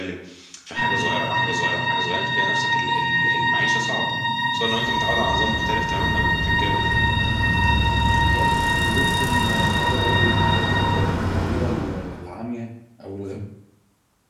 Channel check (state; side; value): identical; both; correlation 1.00